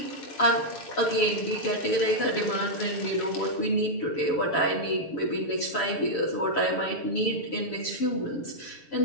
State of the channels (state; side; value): late; right; 7.0 ms